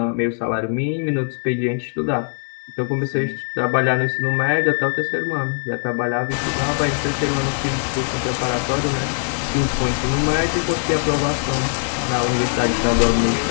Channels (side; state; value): right; silent; digital silence